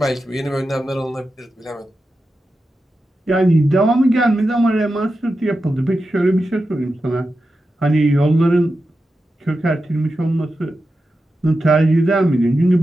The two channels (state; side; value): normal; both; correlation 0.90